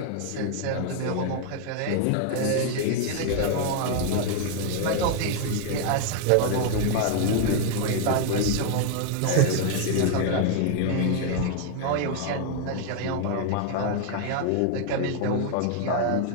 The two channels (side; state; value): both; different; correlation 0.00